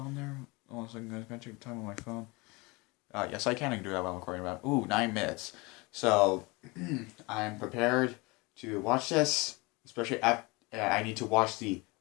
there? Oh, so I'm going to check the time on my phone. Yes, I can do that while I'm recording about... Ooh, 9 minutes. So, I'm prepared to watch this, especially I need to watch the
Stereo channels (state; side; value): quieter; right; 25.7 dB